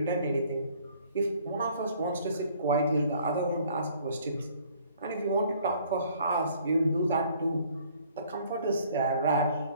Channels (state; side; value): inverted; both; correlation -0.59